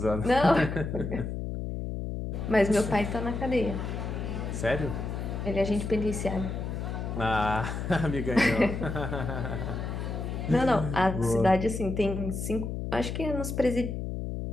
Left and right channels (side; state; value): left; noise; hum, 4 dB below the sound